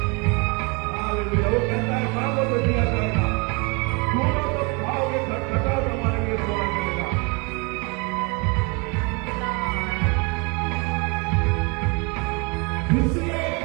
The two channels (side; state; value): left; quieter; 30.9 dB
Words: हालेलुया। वो कहता है मांगो तो दिया जाएगा, ढूंढो तो पाओगे, खटखटाओ तो हमारे लिए खोला जाएगा। इसलिए